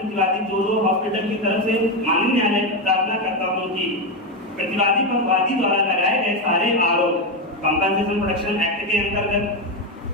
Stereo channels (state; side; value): normal; both; correlation 0.10